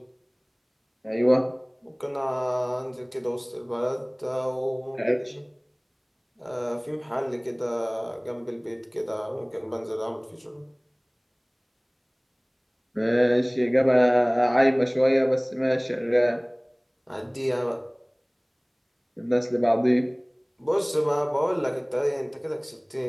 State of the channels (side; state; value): both; identical; correlation 1.00